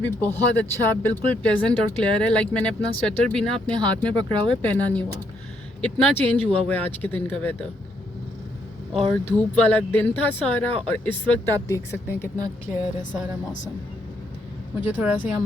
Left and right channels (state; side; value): normal; both; correlation 0.73